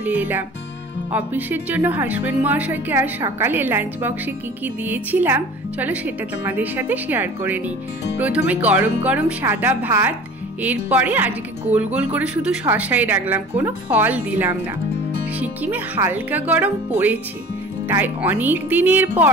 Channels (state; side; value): normal; both; correlation 0.42